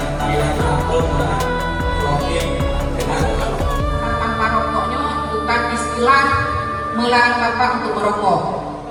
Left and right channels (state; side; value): identical; both; correlation 1.00